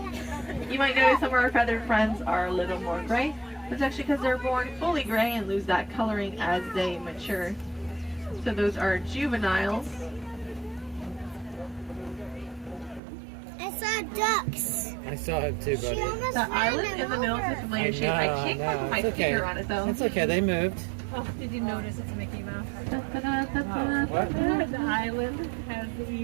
You might notice some of our feathered friends are a little more gray. That's actually because they're born fully gray and lose that coloring as they mature. So those are juveniles. I saw ducks. I saw it too, She buddy. almost The ran island them in the middle is over. a familiar shape. I can't quite put my It's okay. finger on it though. It's okay, they moved. Oh, did you notice it's Mickey Mouse? What? The island has the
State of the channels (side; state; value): left; drops out; at 13.0 s